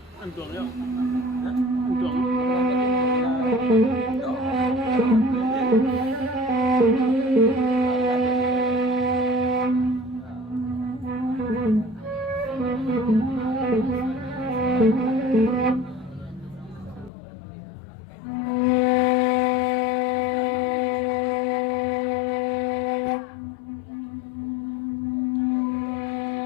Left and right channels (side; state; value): right; drops out; at 17.1 s